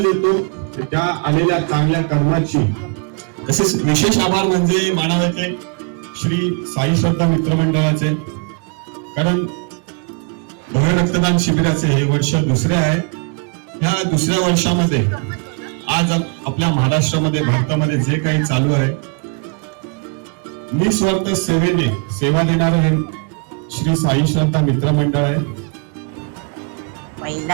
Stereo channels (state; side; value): quieter; left; 37.2 dB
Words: येतो त्या आलेल्या चांगल्या कर्माची। तसेच विशेष आभार म्हणजे मानावते श्री साई श्रद्धा मित्रमंडळाचे, कारण भव्य रक्तदान शिबिराचे हे वर्ष दुसरे आहे। या दुसऱ्या वर्षामध्ये आज आपल्या महाराष्ट्रामध्ये भारतामध्ये जे काही चालू आहे, निस्वार्थ सेवेने सेवा देणारं हे श्री साई श्रद्धा मित्र मंडळ आहे.